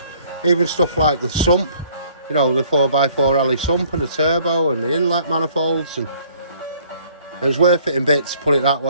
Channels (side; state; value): both; inverted; correlation -0.59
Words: Even stuff like the sump, you know, the 4x4 alley sump and the turbo and the inlet manifolds. And it was worth it in bits, put it that